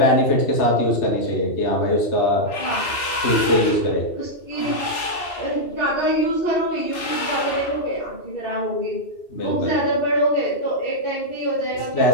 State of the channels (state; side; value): late; right; 2.7 ms